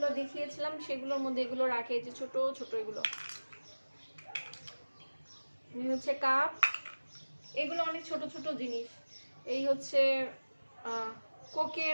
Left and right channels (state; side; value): inverted; both; correlation -1.00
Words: দেখিয়েছিলাম সেগুলোর মধ্যে এগুলো রাখে, এই যে ছোট ছোট এগুলো। এই হচ্ছে কাপ, এগুলো অনেক ছোট ছোট জিনিস। এই হচ্ছে